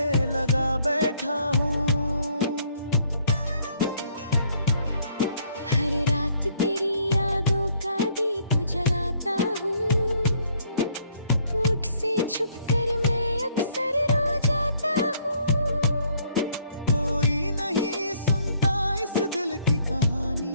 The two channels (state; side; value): inverted; both; correlation -0.64